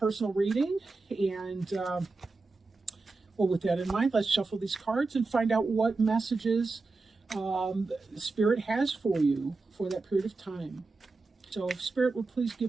reading, and well, with that in mind, let's shuffle these cards and find out what messages Spirit has for you for that period of time. So if Spirit would please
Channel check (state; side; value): quieter; left; 3.7 dB